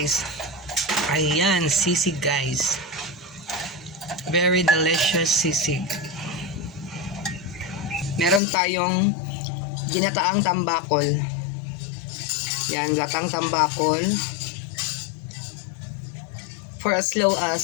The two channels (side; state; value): right; drops out; at 8.4 s